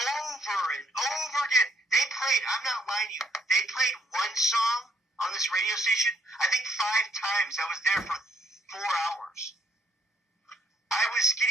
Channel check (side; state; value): both; normal; correlation 0.69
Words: and over again. They played, I'm not lying to you, they played one song on this radio station, I think 5 times. I was there